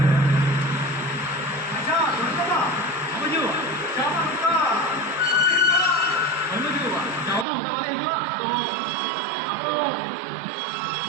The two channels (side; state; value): left; drops out; at 7.5 s